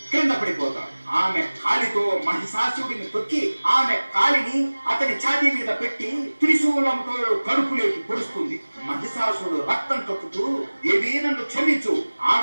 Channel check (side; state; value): both; inverted; correlation -1.00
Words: క్రింద పడిపోతాడు. ఆ ఆమె కాలితో మహిషాసురుడిని తొక్కి ఆమె కాలిని అతని ఛాతీ మీద పెట్టి త్రిశూలంతో కడుపులోకి పొడుస్తుంది. మహిషాసురుడు రక్తం కక్కుతూ, దేవి నన్ను క్షమించు,